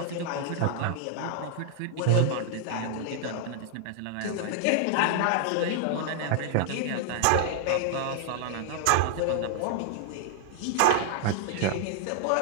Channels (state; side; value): different; both; correlation -0.01